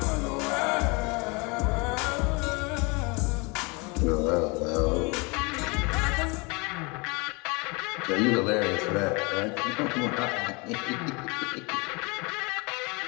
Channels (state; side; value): quieter; right; 28.6 dB